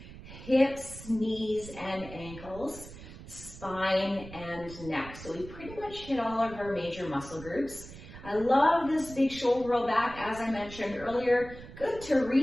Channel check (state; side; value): noise; right; rumble, 15 dB below the sound